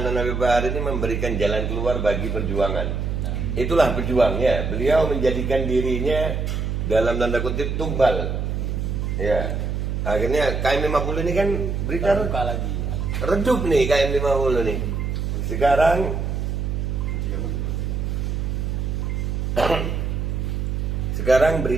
Habib Bahar ini memberikan jalan keluar bagi perjuangan. Itulah pejuangnya. Beliau menjadikan dirinya dalam tanda kutip tumbal. Ya. Akhirnya KM 50 ini kan berita lagi. Redup nih KM 50 nih. Sekarang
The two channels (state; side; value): noise; right; hum, 1 dB below the sound